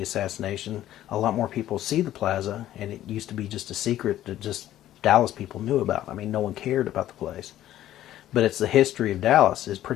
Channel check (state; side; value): quieter; right; 13.1 dB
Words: assassination, a lot more people see the plaza, and it used to be just a secret that just Dallas people knew about. I mean, no one cared about the place. But it's the history of Dallas is